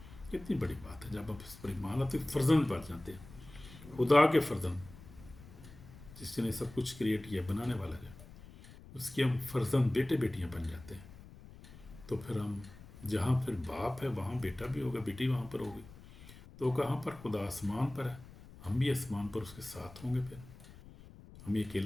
کتنی بڑی بات ہے، جب آپ اس پر ایمان لاتے ہیں فرزند بن جاتے ہیں، خدا کے فرزند، جس نے سب کچھ کریٹ کیا، بنانے والا ہے، اس کے ہم فرزند بیٹے بیٹیاں بن جاتے ہیں۔ تو پھر ہم جہاں پھر باپ ہے وہاں بیٹا بھی ہوگا، بیٹی وہاں پر ہوگی، تو کہاں پر؟ خدا آسمان پر ہے، ہم بھی آسمان پر اس کے ساتھ ہوں گے، پھر ہمیں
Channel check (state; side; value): noise; left; rumble, 18 dB below the sound